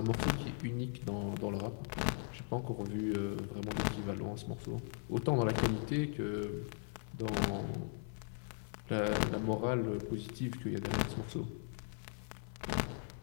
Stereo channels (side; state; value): right; silent; 52 dB below the other